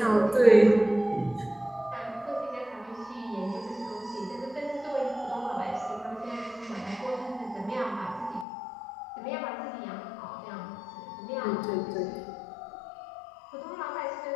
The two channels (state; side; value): drops out; right; at 8.5 s